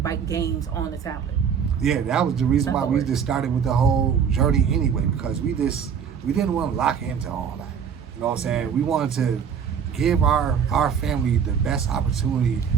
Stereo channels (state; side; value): quieter; left; 7.3 dB